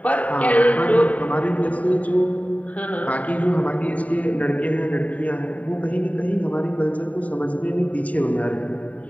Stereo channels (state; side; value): late; right; 0.069 ms